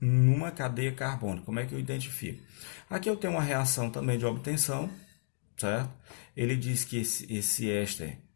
numa cadeia carbônica? Como é que eu identifico? Aqui eu tenho uma reação também de obtenção, certo? Ele diz que esse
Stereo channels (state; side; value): silent; right; digital silence